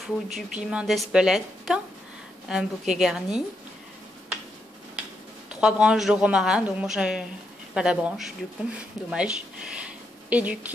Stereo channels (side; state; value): both; normal; correlation 0.81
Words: du piment d'Espelette, un bouquet garni, 3 branches de romarin, donc moi j'ai pas la branche du coup, dommage, et du